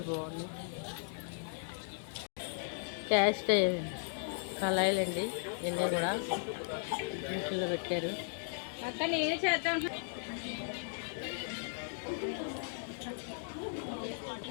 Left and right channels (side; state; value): right; silent; digital silence